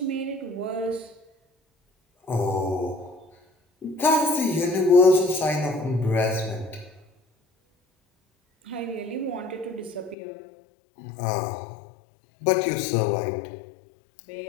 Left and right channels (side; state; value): right; drops out; at 10.2 s